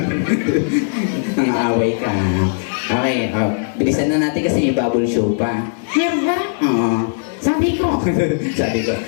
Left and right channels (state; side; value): silent; right; 61 dB below the other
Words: Nang-aaway ka. Okay, bilisan na natin kasi may bubble show pa. Meron ba? Oo. Sabi ko. Sabi ko.